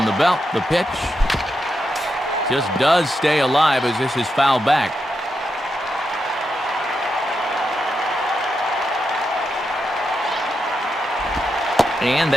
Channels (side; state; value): both; normal; correlation 0.85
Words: the belt, the pitch just does stay alive as this is fouled back. And